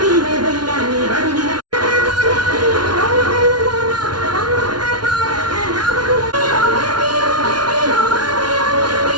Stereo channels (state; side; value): late; left; 0.70 ms